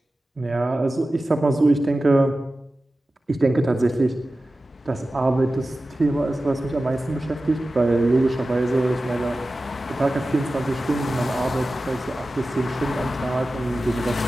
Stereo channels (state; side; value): normal; both; correlation 0.95